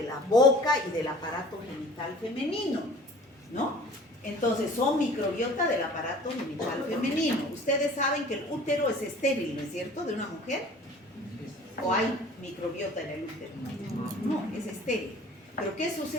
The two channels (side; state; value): both; normal; correlation 0.47